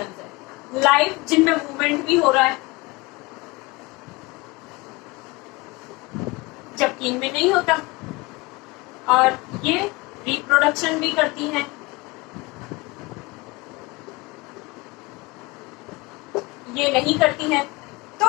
है। लाइफ जिनमें मूवमेंट भी हो रहा है जबकि इनमें नहीं होता, और ये रिप्रोडक्शन भी करती हैं। ये नहीं करती है।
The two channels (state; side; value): quieter; right; 23.6 dB